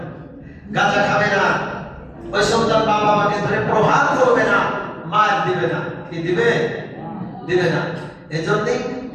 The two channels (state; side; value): identical; both; correlation 1.00